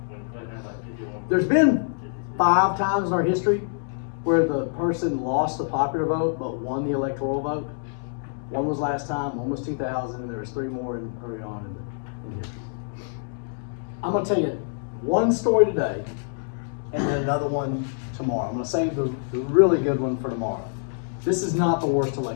Clinton had like 51. There's been 5 times in our history where the person lost the popular vote but won the electoral vote. One was last time, one was 2000, and there was 3 more early on in history. I'm going to tell you one story today, and then another one tomorrow. I'm going to save the really good one for tomorrow. This is not the worst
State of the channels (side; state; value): right; silent; digital silence